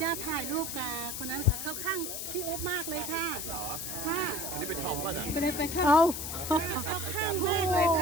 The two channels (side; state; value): left; noise; hiss, 5 dB below the sound